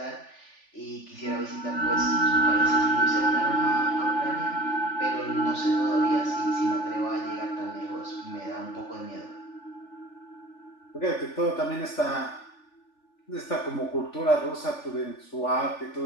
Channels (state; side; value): late; right; 3.4 ms